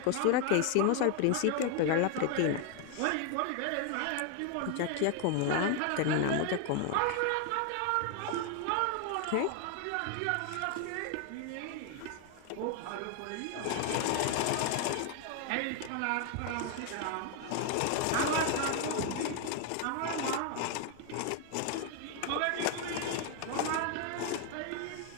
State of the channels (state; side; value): different; both; correlation 0.00